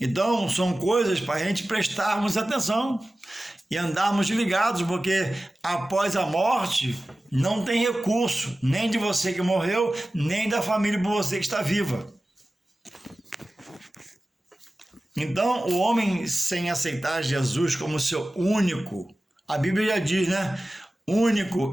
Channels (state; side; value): normal; both; correlation 0.96